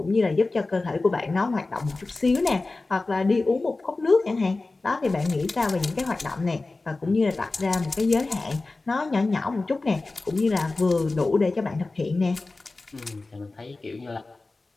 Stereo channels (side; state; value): right; quieter; 3.4 dB